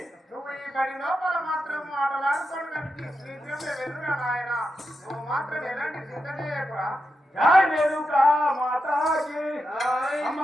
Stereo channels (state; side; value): normal; both; correlation 0.87